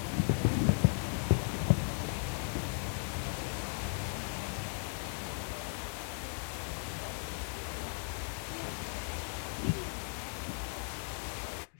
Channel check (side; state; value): right; silent; 53 dB below the other